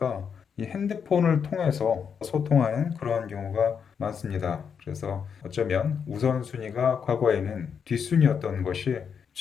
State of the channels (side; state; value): right; quieter; 6.9 dB